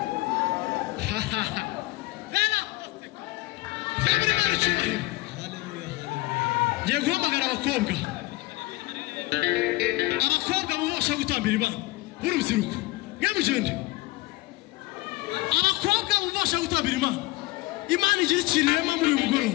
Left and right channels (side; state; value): right; quieter; 21.0 dB